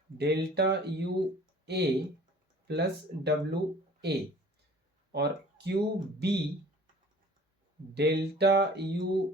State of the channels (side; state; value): both; normal; correlation 0.48